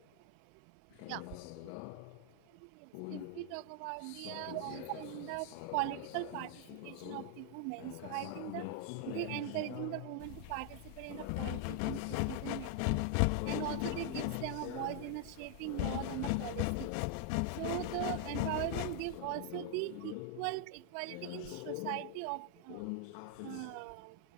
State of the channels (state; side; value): different; both; correlation 0.00